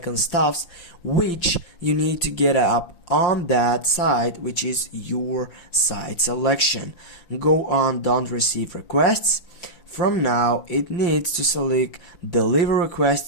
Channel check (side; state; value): right; late; 5.8 ms